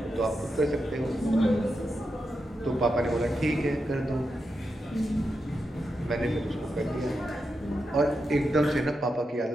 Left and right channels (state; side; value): normal; both; correlation 0.87